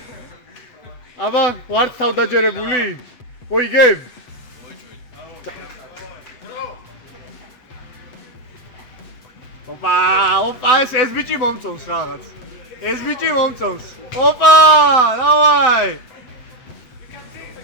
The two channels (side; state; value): right; late; 8.0 ms